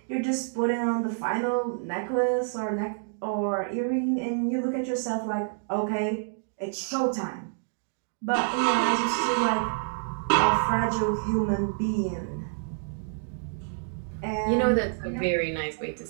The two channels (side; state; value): left; silent; digital silence